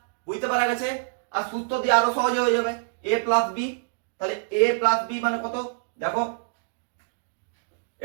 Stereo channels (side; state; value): left; silent; digital silence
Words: বুঝতে পারা গেছে? আর সূত্র দিয়ে আরো সহজে হয়ে যাবে, a প্লাস বি। তাহলে a প্লাস বি মানে কত? দেখো